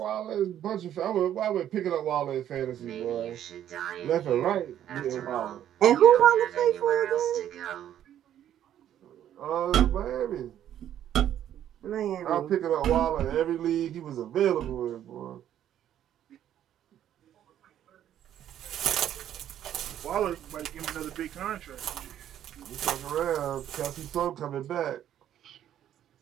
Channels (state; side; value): quieter; left; 10.9 dB